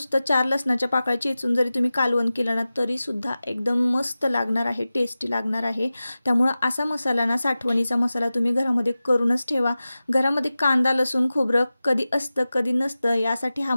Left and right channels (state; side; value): inverted; both; correlation -0.95